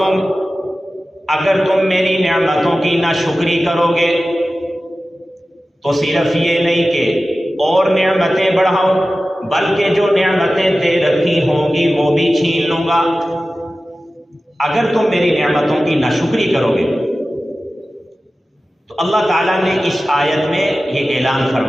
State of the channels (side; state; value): both; normal; correlation 0.95